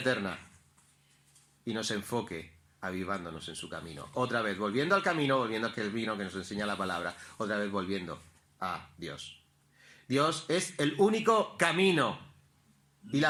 y nos enfoque avivándonos en su camino. Otra vez, volviendo al camino, volviendo al camino que nos enseña la palabra, otra vez volviendo a Dios. Dios es el único camino y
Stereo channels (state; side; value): identical; both; correlation 1.00